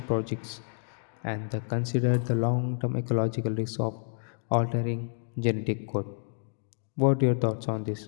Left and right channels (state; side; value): silent; right; 58 dB below the other